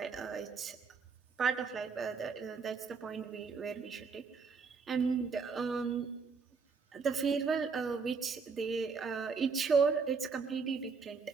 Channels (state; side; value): quieter; left; 5.1 dB